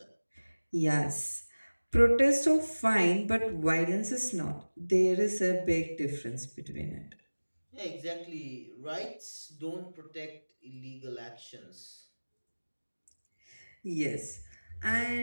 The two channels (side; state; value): both; inverted; correlation -1.00